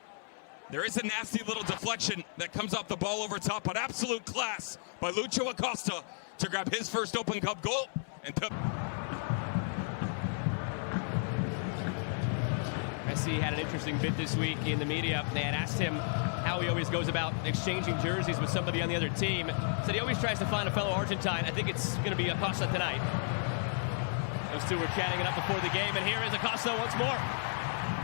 There is a nasty little deflection that comes off the ball over top, but absolute class by Lucho Acosta to grab his first Open Cup goal. And Messi had an interesting bit this week in the media. They had asked him how he always goes about exchanging jerseys with somebody on the other team. Said he always tries to find a fellow Argentine. I think it's going to be Acosta tonight. Those two were chatting it up before the game, and here is Acosta once more.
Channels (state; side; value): silent; right; 56 dB below the other